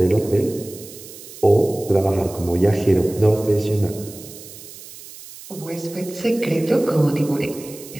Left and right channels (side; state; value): right; noise; hiss, 16 dB below the sound